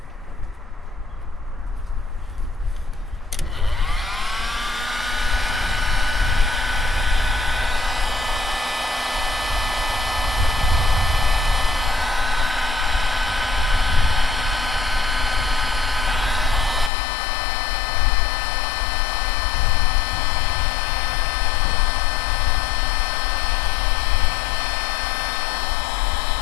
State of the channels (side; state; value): right; drops out; at 16.9 s